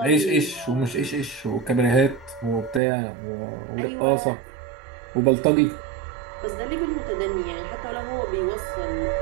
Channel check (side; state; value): left; drops out; at 2.8 s